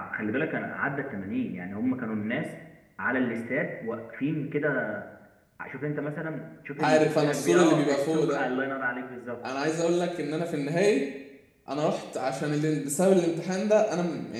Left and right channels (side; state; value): both; identical; correlation 1.00